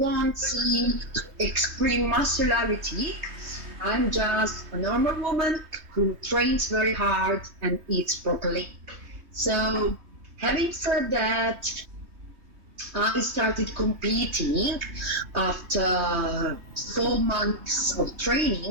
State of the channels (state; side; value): late; left; 3.2 ms